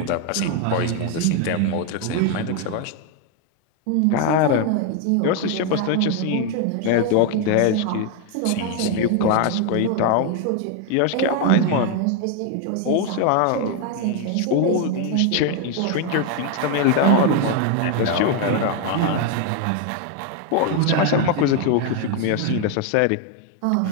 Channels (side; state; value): both; different; correlation 0.01